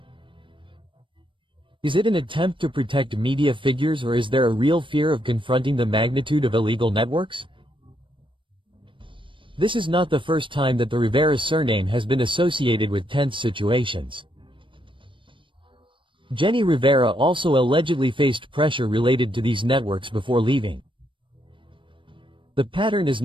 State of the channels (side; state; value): left; late; 0.25 ms